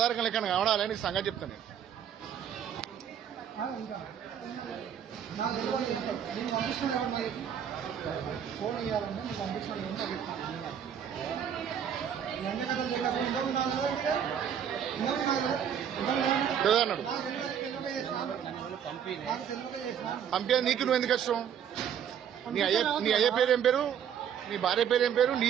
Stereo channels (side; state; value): left; quieter; 8.7 dB